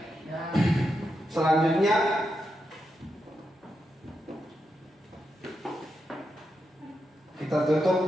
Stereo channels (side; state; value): both; normal; correlation 0.86